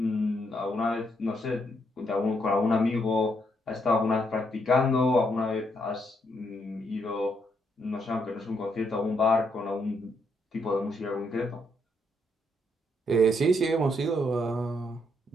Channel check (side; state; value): both; normal; correlation 0.75